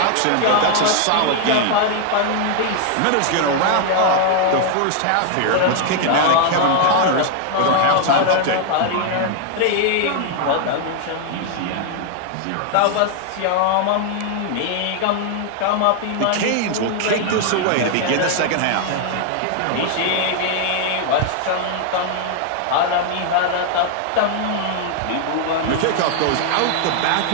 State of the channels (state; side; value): different; both; correlation 0.00